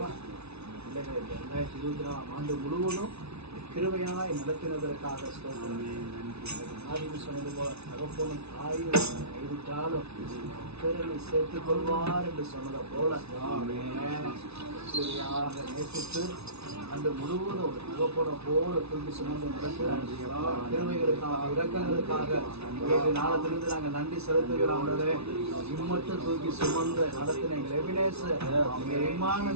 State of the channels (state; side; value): late; left; 0.80 ms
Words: பிள்ளைகளை 2024 ஆண்டு முழுவதும் கிருபையாய் நடத்தினதற்காக சொன்னது போல தகப்பனும் தாயும் கைவிட்டாலும் பிறனை சேர்த்துக் கொள்வார் என்று சொன்னதை போல கிருபையாக நேசித்து அன்று முழுவதும் ஒரு தகப்பனை போல தூக்கி சுமந்து நடக்கிறார். கிருபைகளுக்காக இரக்கங்களுக்காக நாளத்திலிருந்து நாங்கள் நன்றி செலுத்துகிறோம். இம்மட்டும் தூக்கி சுமந்து நடத்தின எங்கள் எபினேசர்